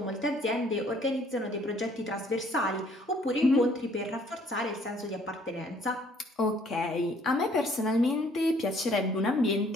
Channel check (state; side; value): normal; both; correlation 0.61